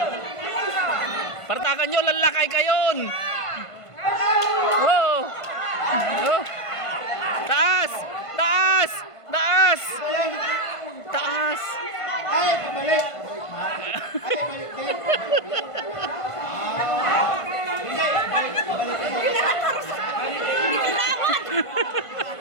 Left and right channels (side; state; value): right; late; 1.5 ms